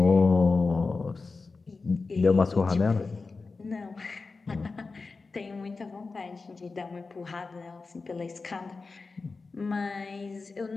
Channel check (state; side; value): quieter; right; 4.1 dB